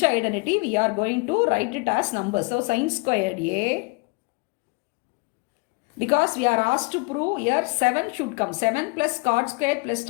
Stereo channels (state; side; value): quieter; right; 29.1 dB